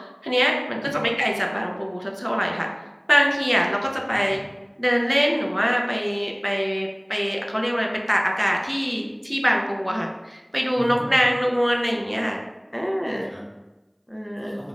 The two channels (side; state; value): both; identical; correlation 1.00